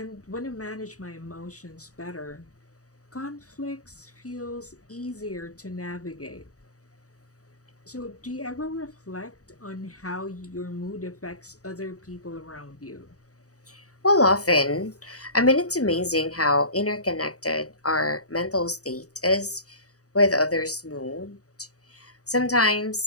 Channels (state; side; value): late; right; 0.66 ms